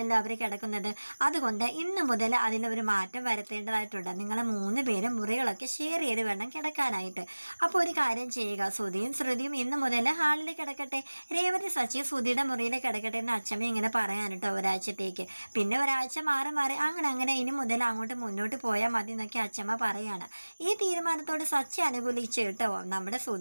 അവർ കിടക്കുന്നത്. അതുകൊണ്ട് ഇന്ന് മുതൽ അതിലൊരു മാറ്റം വരുത്തേണ്ടതായിട്ടുണ്ട്. നിങ്ങളെ മൂന്ന് പേരും മുറികളൊക്കെ ഷെയർ ചെയ്ത് വേണം കിടക്കാനായിട്ട്. അപ്പോൾ ഒരു കാര്യം ചെയ്യുക, സുധിയും ശ്രുതിയും ഇന്ന് മുതൽ ഹാളിൽ കിടക്കട്ടെ, രേവതി സച്ചിയും സുധിയുടെ മുറിയിൽ കിടക്കട്ടെ എന്ന് അച്ഛമ്മ ഇങ്ങനെ പറയാൻ കേട്ടോ ഒരാഴ്ചത്തേക്ക്. പിന്നെ ഒരാഴ്ച മാറി മാറി അങ്ങനെ ഇനി മുതൽ അങ്ങോട്ട് മുന്നോട്ട് പോയാൽ മതി എന്നൊക്കെ അച്ഛമ്മ പറയാണ്. ഈ തീരുമാനത്തോട് സച്ചി അനുകൂലിച്ച് കേട്ടോ. നമ്മുടെ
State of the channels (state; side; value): inverted; both; correlation -1.00